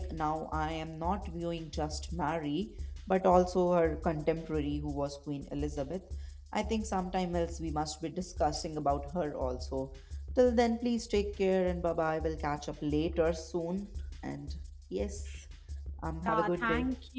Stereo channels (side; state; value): both; identical; correlation 1.00